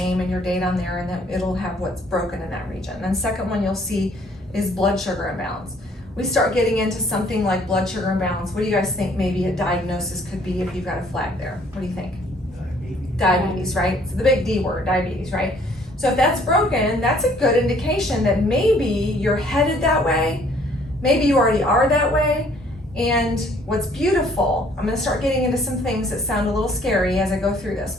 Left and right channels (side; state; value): both; normal; correlation 0.60